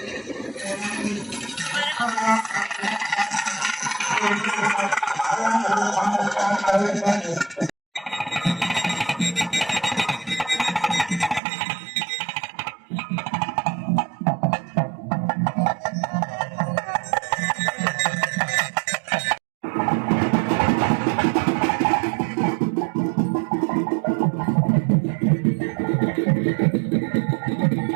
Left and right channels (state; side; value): drops out; left; at 11.4 s